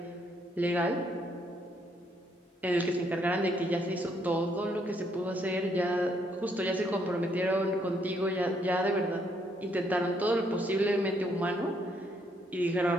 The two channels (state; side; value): normal; both; correlation 0.71